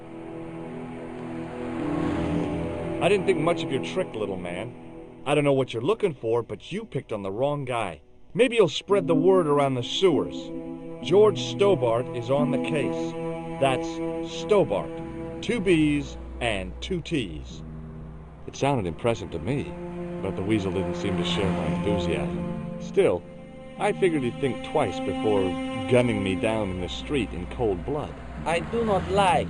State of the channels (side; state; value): both; identical; correlation 1.00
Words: I didn't think much of your trick, little man. I don't know what you're looking for, but you picked on the wrong guy. Maybe you'll spread the word around the sewers. George Stobart is on the case. That's Stobart. 2 B's and 2 T's. It sounded impressive to me, but the weasel didn't seem to share my enthusiasm. Still, I figured he'd think twice before gunning me down in the street in cold blood. I do not like